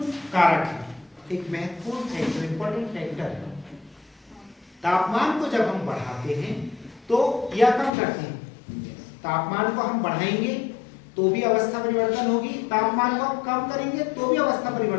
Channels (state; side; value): drops out; right; at 7.9 s